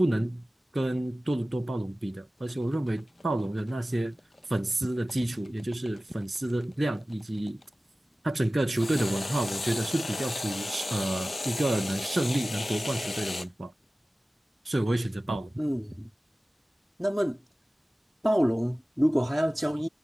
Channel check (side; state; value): both; normal; correlation 0.97